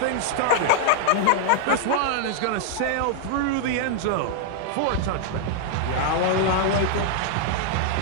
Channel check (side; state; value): both; different; correlation 0.00